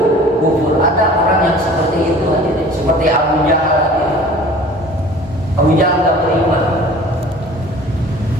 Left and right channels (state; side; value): normal; both; correlation 0.46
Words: Ada orang yang seperti itu, seperti Abu Jahal. Abu Jahal enggak beriman.